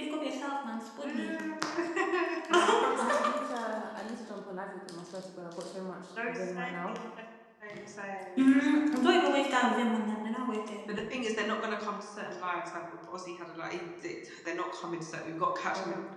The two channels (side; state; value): both; identical; correlation 1.00